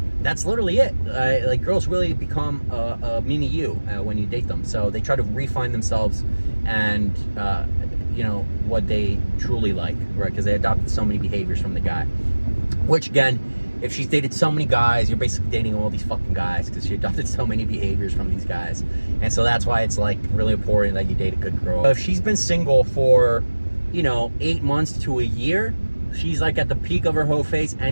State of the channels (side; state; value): both; inverted; correlation -1.00